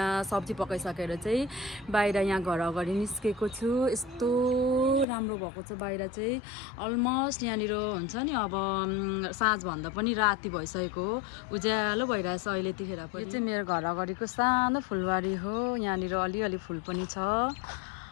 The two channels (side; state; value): right; drops out; at 5.1 s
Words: सब्जी पकाइसकेर चाहिँ बाहिर यहाँ घर अगाडि निस्केको छु। यस्तो राम्रो भएको छ बाहिर चाहिँ। अलमोस्ट यहाँनिर हुन्छ नि अब साँझभन्दा पनि राति भइसकेको हो, उज्यालो भइरहेछ अहिले त्यतिखेर पनि। यो चाहिँ मेरो घर अगाडिको सानो फुलबारी हो, यहाँनिर अलिअलि फुल पनि छ,